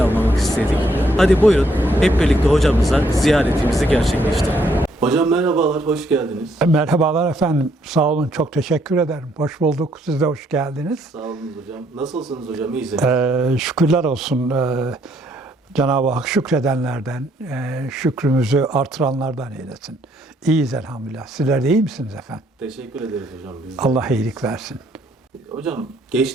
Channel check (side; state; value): both; normal; correlation 0.70